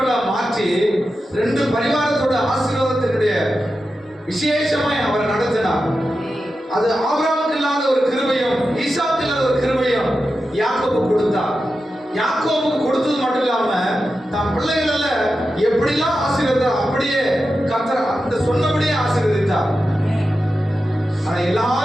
மாற்றி 2 பரிவாரத்தோட ஆசீர்வாதத்தினுடைய விசேஷமாய் அவரை நடத்தினார். அது ஆபிரகாமுக்கு இல்லாத ஒரு கிருபையும் ஈசாக்கு இல்லாத ஒரு கிருபையும் யாக்கோபு கொடுத்தார். யாக்கோபு கொடுத்தது மட்டும் இல்லாம தன் பிள்ளைகள எப்படிலாம் ஆசீர்வதித்தார் அப்படியே கர்த்தர் அந்த சொன்னபடியே ஆசீர்வதித்தார். ஆனா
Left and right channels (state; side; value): normal; both; correlation 0.91